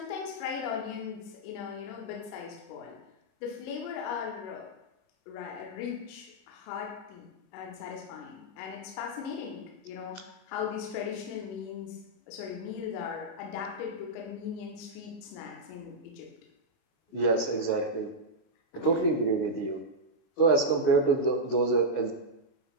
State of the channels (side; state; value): right; late; 29 ms